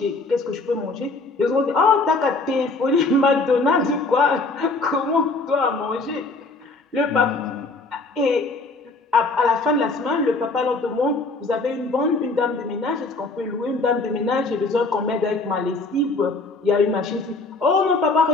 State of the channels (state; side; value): quieter; right; 3.4 dB